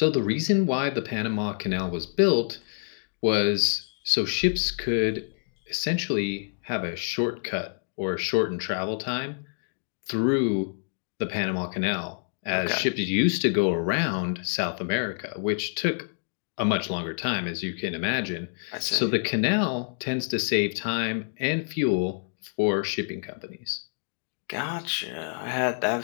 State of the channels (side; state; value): right; silent; digital silence